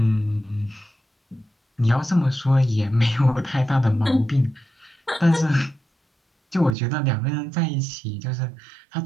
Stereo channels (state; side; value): drops out; left; at 6.8 s